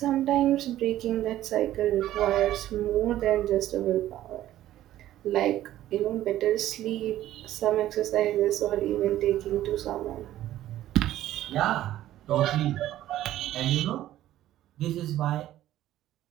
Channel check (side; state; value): left; quieter; 13.5 dB